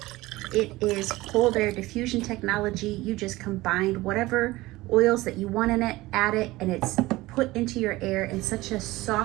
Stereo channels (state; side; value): quieter; left; 19.2 dB